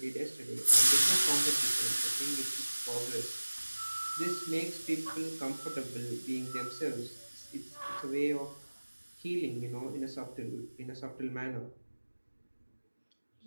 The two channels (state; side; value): inverted; both; correlation -1.00